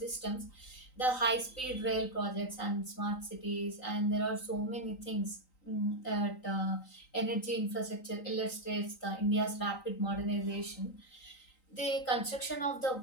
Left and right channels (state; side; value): late; right; 3.9 ms